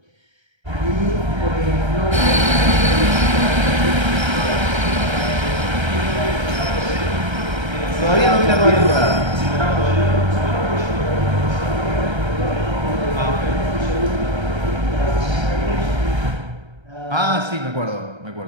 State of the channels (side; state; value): left; late; 1.3 ms